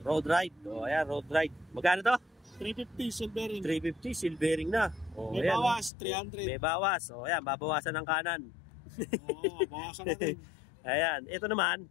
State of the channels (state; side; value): drops out; right; at 5.9 s